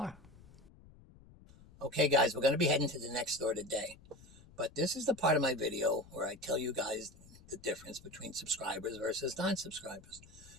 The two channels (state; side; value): noise; left; rumble, 22 dB below the sound